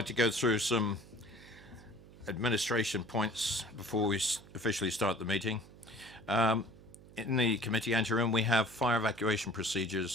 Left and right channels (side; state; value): right; noise; hum, 21 dB below the sound